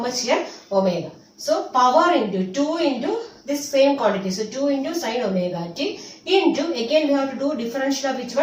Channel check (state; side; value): identical; both; correlation 1.00